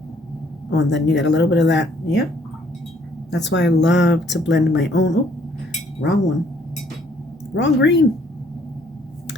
and then you get a little bit of that. Yep. That's why I love to blend my own. Oh, wrong one. Wrong green.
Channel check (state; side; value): normal; both; correlation 0.64